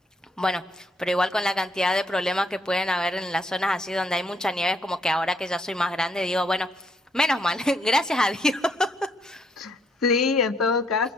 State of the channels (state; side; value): normal; both; correlation 0.71